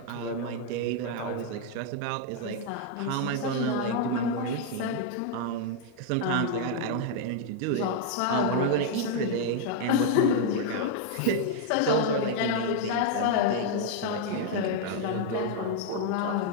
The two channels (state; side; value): different; both; correlation 0.00